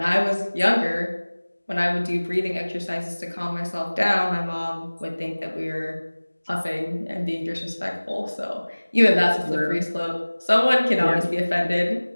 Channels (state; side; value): inverted; both; correlation -1.00